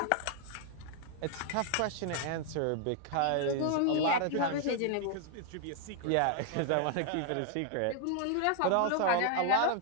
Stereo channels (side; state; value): both; different; correlation 0.00